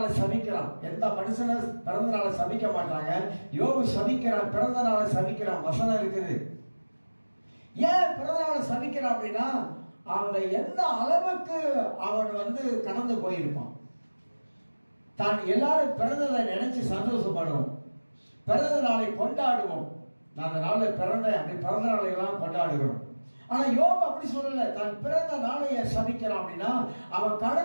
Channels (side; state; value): both; inverted; correlation -1.00